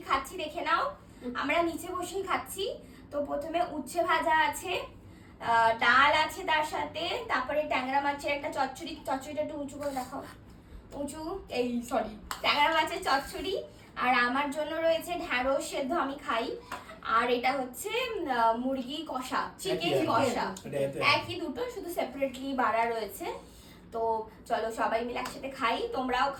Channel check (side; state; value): both; identical; correlation 1.00